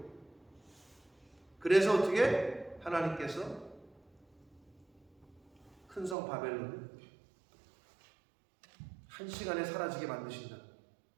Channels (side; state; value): left; drops out; at 6.2 s